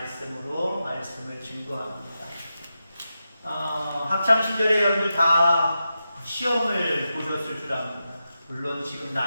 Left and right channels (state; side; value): inverted; both; correlation -0.89